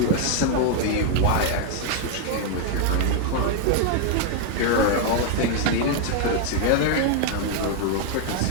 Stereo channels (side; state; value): both; different; correlation 0.00